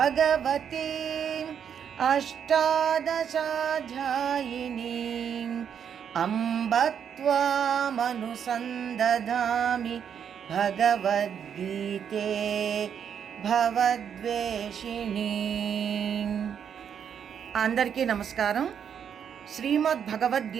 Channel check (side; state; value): left; quieter; 8.1 dB